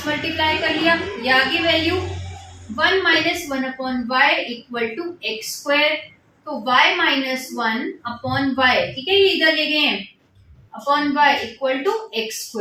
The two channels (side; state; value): both; identical; correlation 1.00